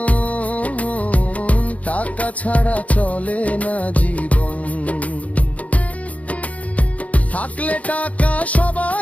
টাকা ছাড়া চলে না জীবন। থাকলে টাকা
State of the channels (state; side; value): late; right; 0.068 ms